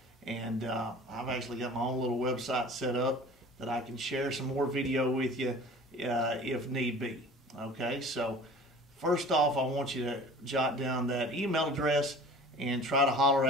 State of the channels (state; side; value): normal; both; correlation 0.43